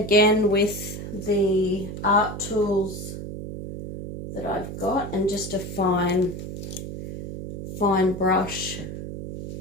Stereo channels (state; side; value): noise; right; hum, 8 dB below the sound